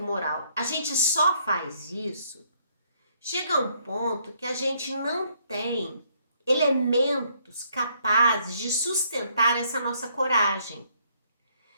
moral, a gente só faz isso, chega um ponto que a gente não tem elementos capazes de sustentar essa nossa coragem.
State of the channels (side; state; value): both; inverted; correlation -0.69